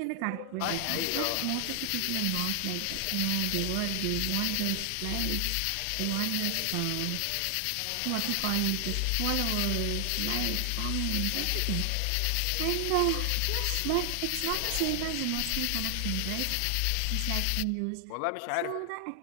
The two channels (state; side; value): different; both; correlation 0.00